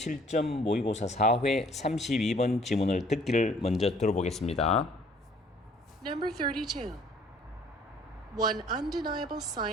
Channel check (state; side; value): normal; both; correlation 0.58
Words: 모의고사 4회 32번 지문을 듣기를 먼저 들어보겠습니다. Number 32. One undeniable